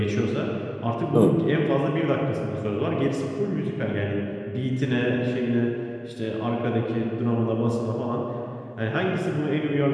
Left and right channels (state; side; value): identical; both; correlation 1.00